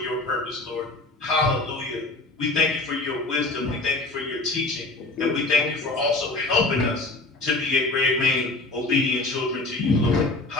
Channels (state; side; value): quieter; right; 3.0 dB